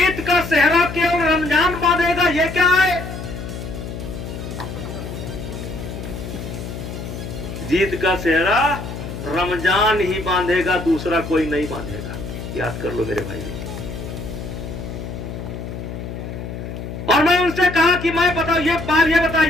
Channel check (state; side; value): noise; left; hum, 8 dB below the sound